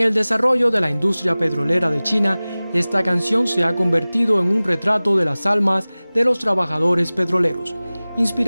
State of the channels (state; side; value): inverted; both; correlation -0.99